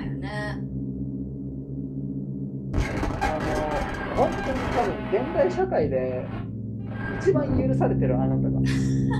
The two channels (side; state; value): both; identical; correlation 1.00